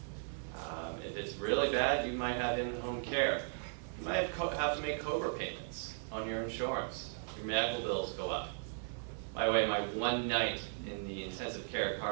If it's really bad, you might have in-home care. You might have to make COBRA payments on your insurance. Your medical bills go up. By the way, my one night in the intensive care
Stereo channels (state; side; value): silent; left; 53 dB below the other